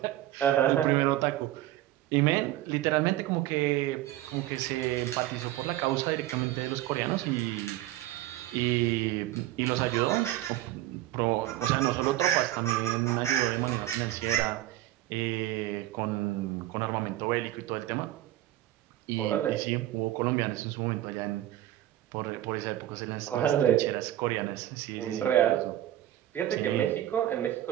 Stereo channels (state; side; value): quieter; left; 14.1 dB